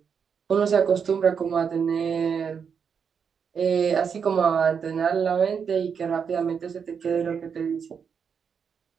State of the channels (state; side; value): quieter; left; 6.7 dB